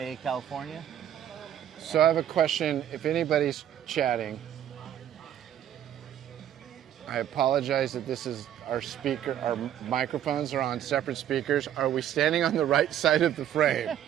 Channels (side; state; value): left; quieter; 10.7 dB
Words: California. So I have a question. If anybody's chatting, I apologize that this is our speaker. Our microphones are on separate speakers. Are we standing on the right side of the frame?